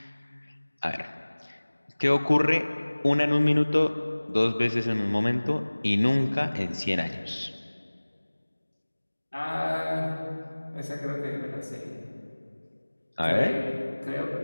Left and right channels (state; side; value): inverted; both; correlation -1.00